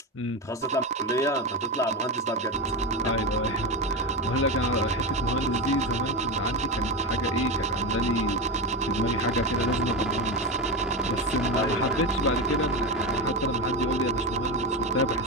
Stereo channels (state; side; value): normal; both; correlation 0.18